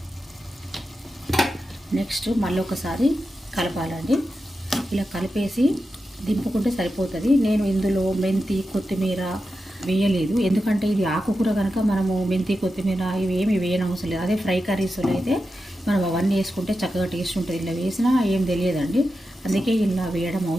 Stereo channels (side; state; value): both; normal; correlation 0.90